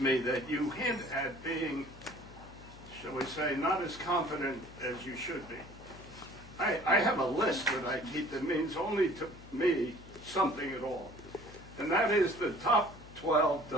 me that you hint at being, shall we say, not as confident as you should be. I have a list that I keep that means only to me something at all. And that is the top 12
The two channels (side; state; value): left; noise; hum, 19 dB below the sound